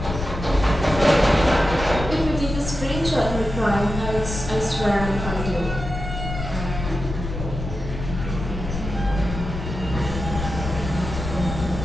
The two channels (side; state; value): left; noise; rumble, 6 dB below the sound